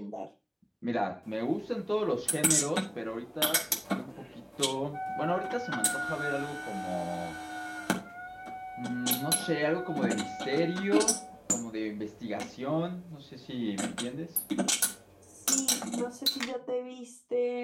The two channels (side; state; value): both; identical; correlation 1.00